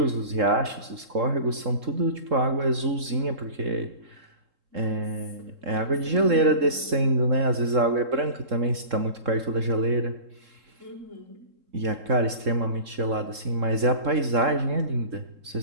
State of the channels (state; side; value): late; left; 3.7 ms